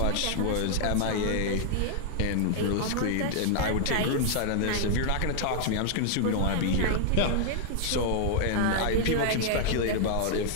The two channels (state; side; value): different; both; correlation 0.00